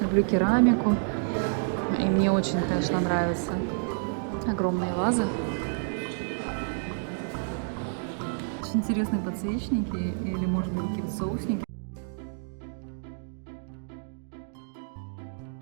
керамику. И мне очень, конечно, нравятся огромные вазы. Очень интересные подсвечники или, может быть, какие-то соусники. Я в очередной раз хочу сказать, не бойтесь путешествовать с детьми и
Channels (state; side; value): silent; left; digital silence